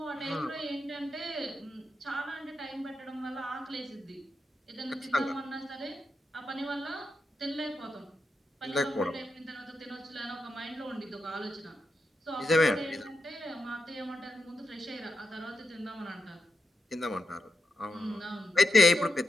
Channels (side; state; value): both; normal; correlation 0.86